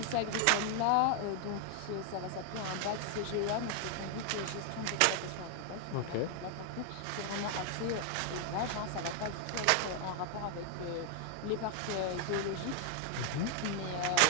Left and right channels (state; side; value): different; both; correlation 0.00